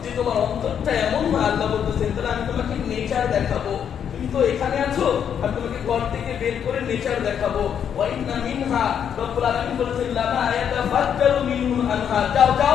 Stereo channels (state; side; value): quieter; right; 8.4 dB